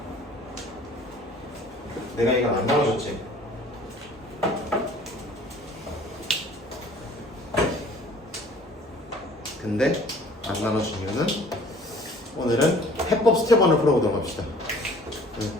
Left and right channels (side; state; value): both; normal; correlation 0.52